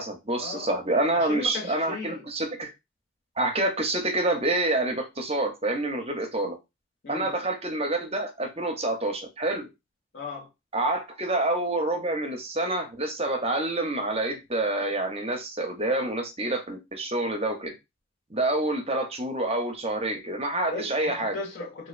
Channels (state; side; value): normal; both; correlation 0.04